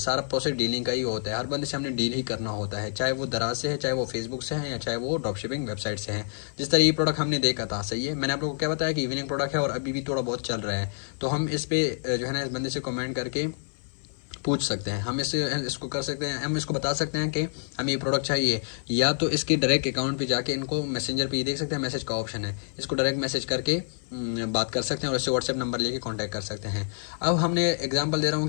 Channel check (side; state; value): right; silent; 60 dB below the other